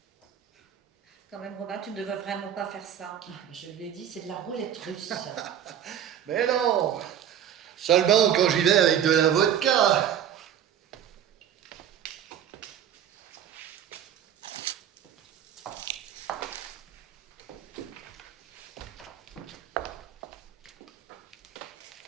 quand même, Robin, tu ne devrais vraiment pas faire ça. Je lui ai dit, c'est de la roulette russe. Mais non! Seulement quand j'y vais avec de la vodka!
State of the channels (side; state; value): left; quieter; 9.6 dB